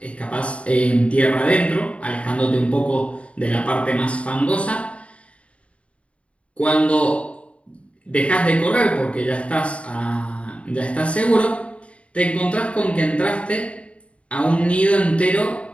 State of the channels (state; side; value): late; right; 0.062 ms